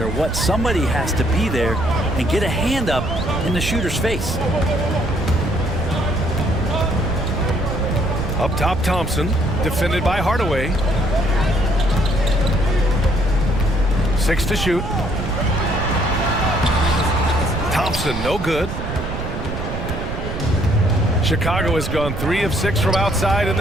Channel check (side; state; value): right; noise; rumble, 6 dB below the sound